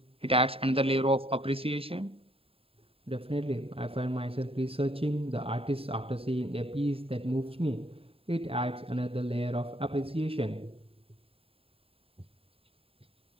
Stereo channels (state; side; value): late; left; 0.27 ms